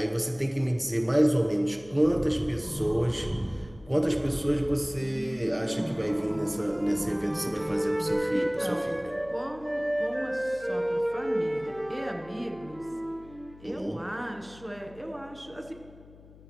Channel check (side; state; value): left; noise; hum, 21 dB below the sound